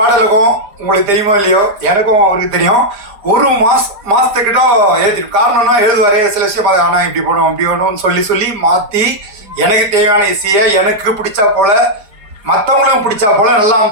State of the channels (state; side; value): late; left; 5.0 ms